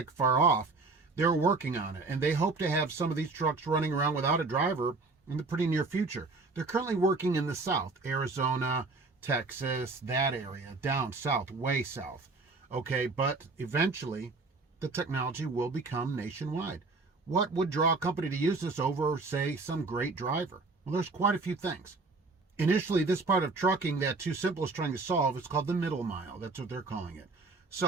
far off. They're working on it, and they hope to have some of these trucks running around without a driver in the pretty near future. They're currently working in the south, Arizona, Texas, that area, down south, way south. Okay, but eventually the technology will become nationwide. What would draw a company to use this over, say, some great driver? Well, there's quite a few things. Initially, this part of trucking that TuSimple is trying to solve is called the middle mile. That's what they're calling it.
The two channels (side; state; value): left; quieter; 3.7 dB